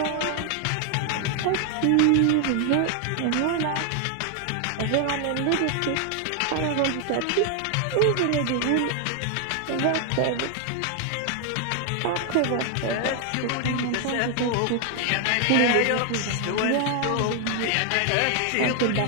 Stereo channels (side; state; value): both; different; correlation 0.00